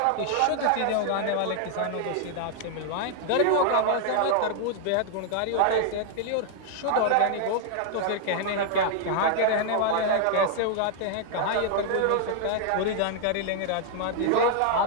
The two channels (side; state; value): both; different; correlation 0.00